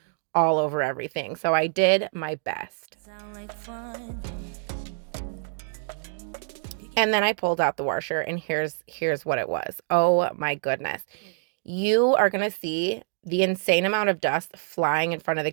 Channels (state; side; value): silent; left; digital silence